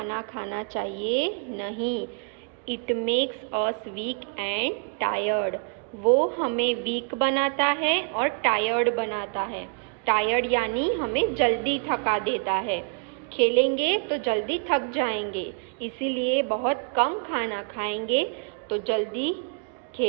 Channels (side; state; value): left; quieter; 37.9 dB